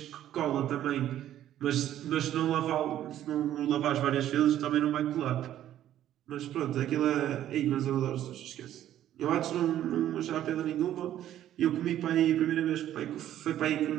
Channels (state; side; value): quieter; left; 11.9 dB